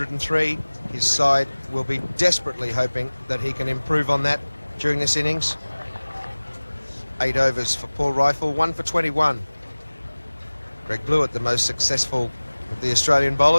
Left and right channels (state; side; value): inverted; both; correlation -1.00